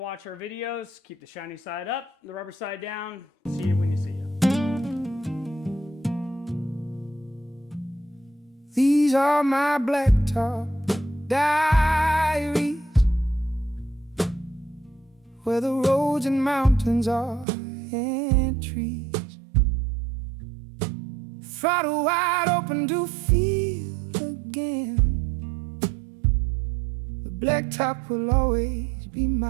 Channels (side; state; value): left; drops out; at 17.4 s